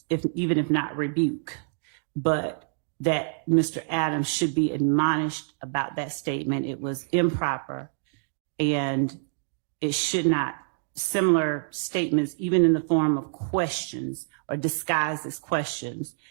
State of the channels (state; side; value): silent; left; digital silence